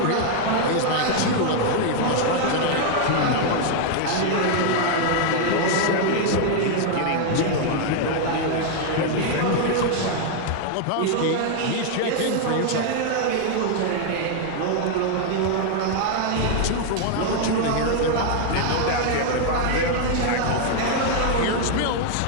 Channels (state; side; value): different; both; correlation 0.00